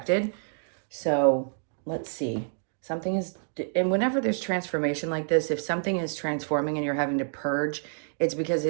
So let's see. Something is, and whenever there's transformation like this, if something is transforming and you're having to purge, it's because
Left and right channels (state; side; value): silent; left; 55 dB below the other